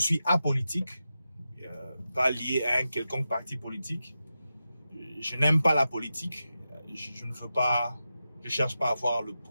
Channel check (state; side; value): inverted; both; correlation -0.91